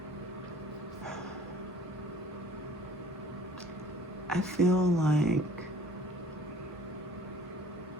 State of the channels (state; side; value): normal; both; correlation 0.52